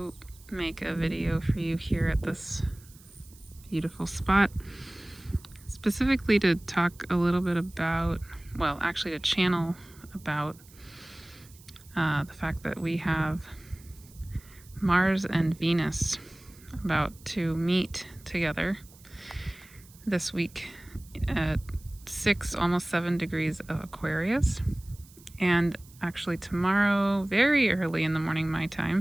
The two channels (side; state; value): right; noise; hiss, 24 dB below the sound